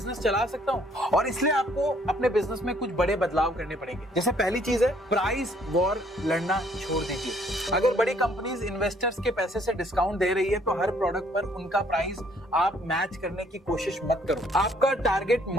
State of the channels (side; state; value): both; normal; correlation 0.63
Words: चला सकता हूँ। और इसलिए आपको अपने बिजनेस में कुछ बड़े बदलाव करने पड़ेंगे। जैसे पहली चीज है, प्राइस वॉर लड़ना छोड़ दीजिए। अगर बड़ी कंपनीज इन्वेस्टर्स के पैसे से डिस्काउंट दे रही है तो हर प्रोडक्ट पर उनका प्राइस आप मैच करने की कोशिश मत करो। आपका टारगेट